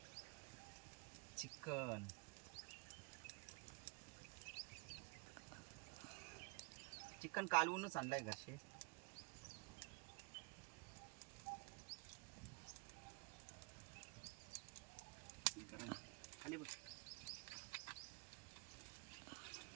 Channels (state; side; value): quieter; left; 30.1 dB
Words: चिकन. चिकन कालवूनच आणलंय घरचे. गरम खाली बघ.